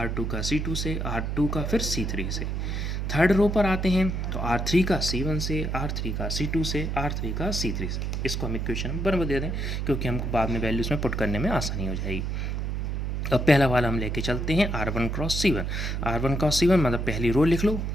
का C2 से, R2 का फिर C3 से। थर्ड रो पर आते हैं तो R3 का C1 से, R3 का C2 से, R3 का C3 से। इसको हम इक्वेशन में बराबर दे दें क्योंकि हमको बाद में वैल्यूज़ में पुट करने में आसानी हो जाएगी। अब पहला वाला हम लेके चलते हैं R1 cross C1, R1 cross C1 मतलब पहली रो लिख लो,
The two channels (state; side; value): noise; right; hum, 2 dB below the sound